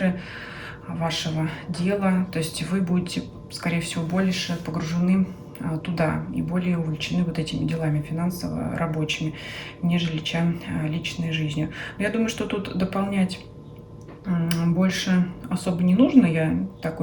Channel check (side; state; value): both; identical; correlation 1.00